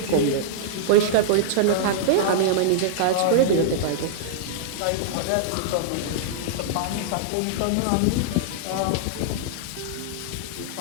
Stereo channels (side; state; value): both; different; correlation -0.02